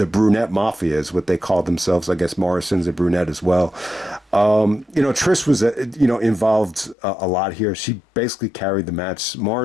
Brunette Mafia is what they call themselves. I guess Morrison's a brunette as well. Trish was, involved a lot here. She basically carried the match.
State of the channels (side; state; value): right; drops out; at 7.0 s